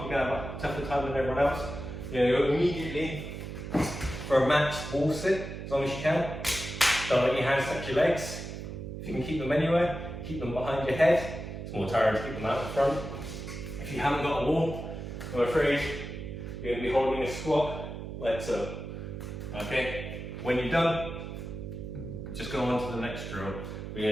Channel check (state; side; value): noise; right; hum, 8 dB below the sound